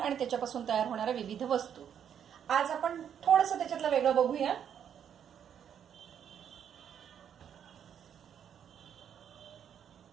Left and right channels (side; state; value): left; quieter; 8.7 dB